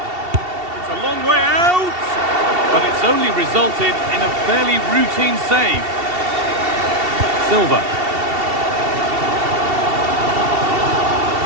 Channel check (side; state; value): left; late; 2.7 ms